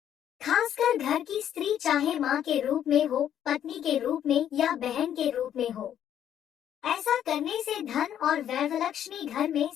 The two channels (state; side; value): quieter; right; 10.2 dB